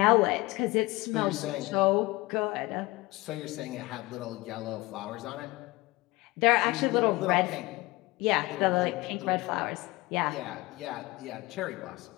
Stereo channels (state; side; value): quieter; right; 20.9 dB